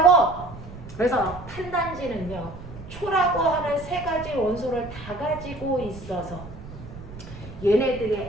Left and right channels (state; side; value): noise; right; rumble, 14 dB below the sound